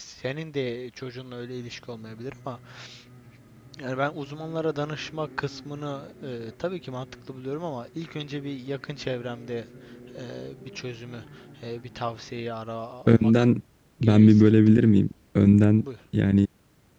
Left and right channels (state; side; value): identical; both; correlation 1.00